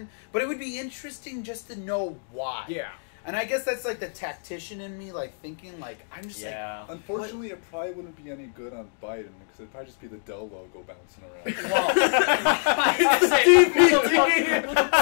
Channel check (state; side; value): silent; right; digital silence